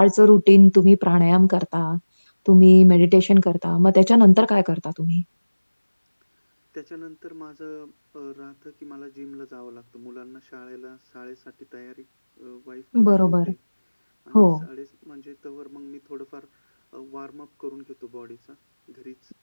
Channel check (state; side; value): inverted; both; correlation -1.00